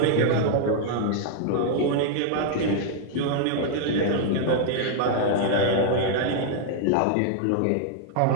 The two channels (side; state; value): both; different; correlation -0.01